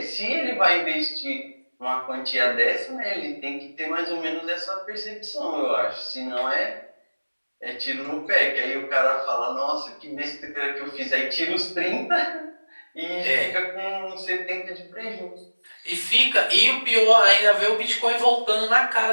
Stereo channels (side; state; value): both; inverted; correlation -1.00